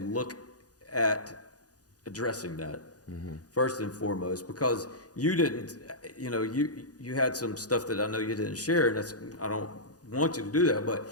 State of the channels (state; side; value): late; right; 0.68 ms